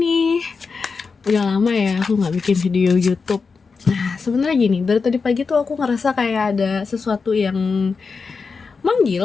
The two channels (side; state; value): right; quieter; 4.9 dB